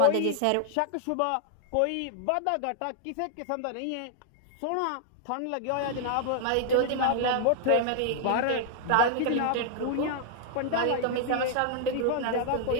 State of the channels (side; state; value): both; different; correlation -0.01